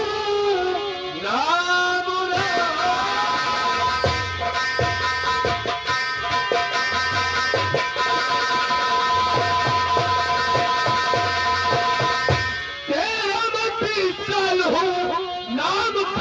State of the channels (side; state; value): both; identical; correlation 1.00